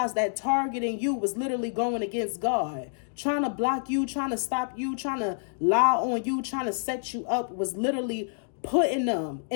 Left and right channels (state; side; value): silent; right; digital silence